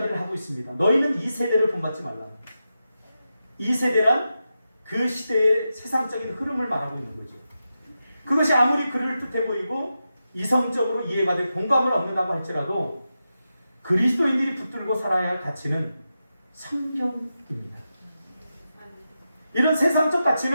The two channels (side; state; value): both; inverted; correlation -0.90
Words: 하고 있습니다. 너희는 이 세대를 본받지 말라. 이 세대란 그 시대의 세상적인 흐름을 말하고 있는 거죠. 그것이 아무리 그를 뜻해 보이고 이성적으로 이해가 돼 공감을 얻는다고 할지라도 그리스도인들이 붙들고 살아야 할 가치는 성경입니다. 이런 세상적